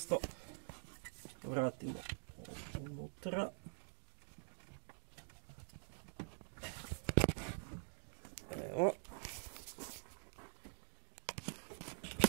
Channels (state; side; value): silent; left; digital silence